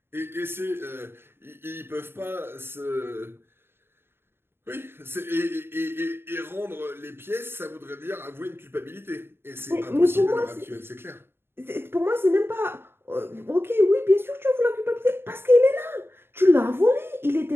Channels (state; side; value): late; left; 0.11 ms